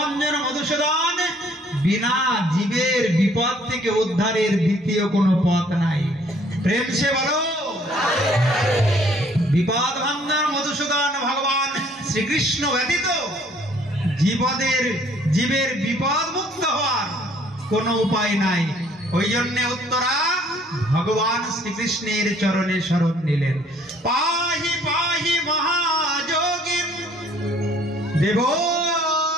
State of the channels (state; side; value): normal; both; correlation 0.60